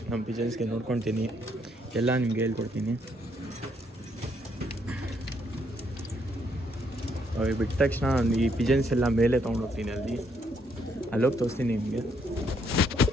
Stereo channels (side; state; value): both; normal; correlation 0.72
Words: ನಮ್ಮ ಪಿಜನ್ಸ್ಗೆ ನೋಡ್ಕೊತೀನಿ ಎಲ್ಲ ನಿಮಗೆ ಹೇಳ್ಕೊಡ್ತೀನಿ. ಬಿಟ್ಟ ತಕ್ಷಣ ಈ ಪಿಜನ್ಸ್ ಎಲ್ಲ ಮೇಲೆ ತೊಗೊಂಡೋಗ್ತೀನಿ, ಅಲ್ಲೋಗಿ ತೋರಿಸ್ತೀನಿ ನಿಮಗೆ.